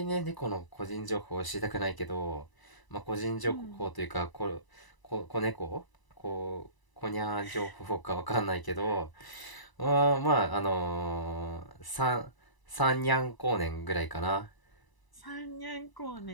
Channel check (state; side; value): late; right; 1.0 ms